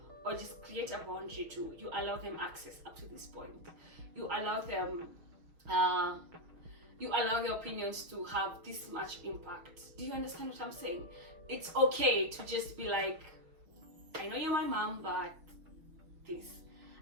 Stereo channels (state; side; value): late; left; 6.3 ms